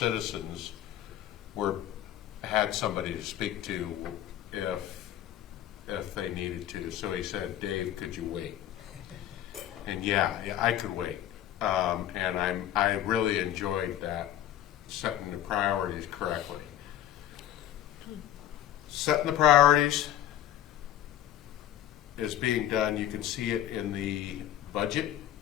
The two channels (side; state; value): right; quieter; 12.0 dB